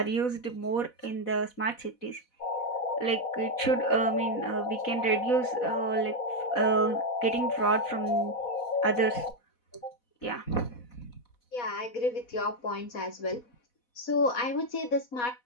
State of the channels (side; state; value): right; late; 4.1 ms